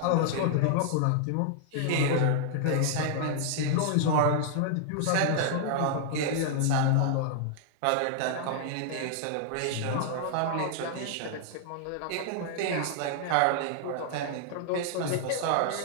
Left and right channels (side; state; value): both; different; correlation -0.01